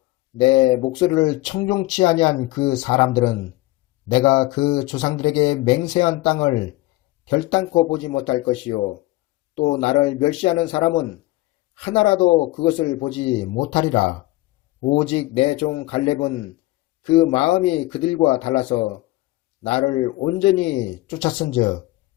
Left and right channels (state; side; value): quieter; right; 19.1 dB